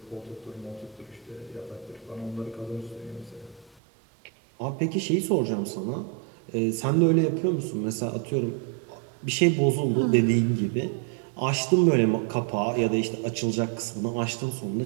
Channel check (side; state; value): left; drops out; at 3.8 s